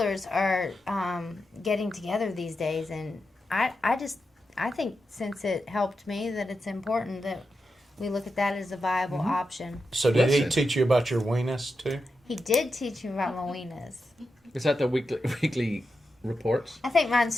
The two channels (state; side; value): normal; both; correlation 0.88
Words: are getting together these days, and I think since it helped me that it's important that we look at that as a viable option. So did he Listen. teach you about your weenus too? He did teach me about my weenus. Is that the weekly reports? I think mine's